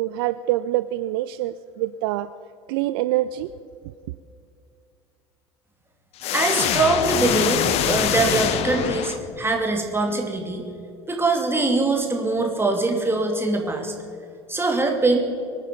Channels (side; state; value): both; normal; correlation 0.40